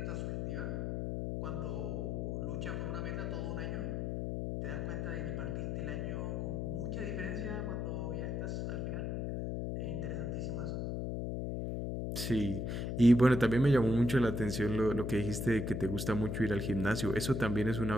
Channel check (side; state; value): left; noise; hum, 2 dB below the sound